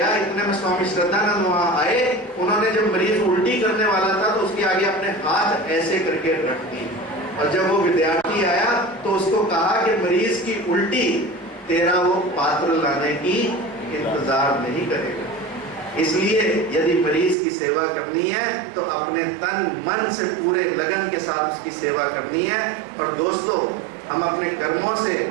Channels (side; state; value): left; drops out; at 17.4 s